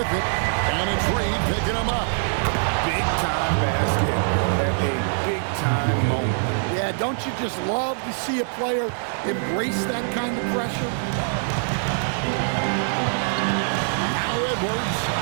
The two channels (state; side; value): silent; left; 63 dB below the other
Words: with it, and it's Reed picking him up. Big-time basket at a big-time moment. Yeah, don't you just love to see a player embrace that kind of pressure? Edwards.